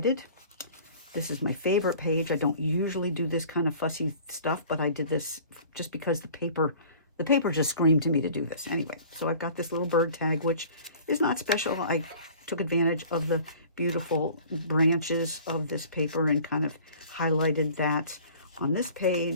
This is my favorite page. I don't usually do this kind of fussy stuff, but I did this just because the paper just screamed to me to do this. Anyway, so I've got this little bird tag, which is not special. I took advantage of the beautiful branches of this paper and kind of highlighted that on this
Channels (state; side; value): inverted; both; correlation -0.47